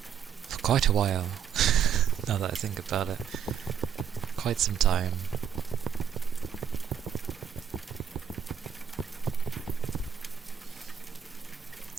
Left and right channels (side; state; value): left; quieter; 8.2 dB